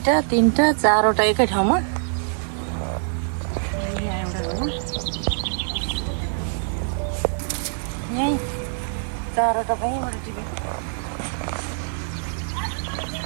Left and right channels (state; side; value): silent; left; 63 dB below the other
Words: 3 4वटा एकै ठाउँमा यहीँ 4वटा यहीँबाट टिप्यो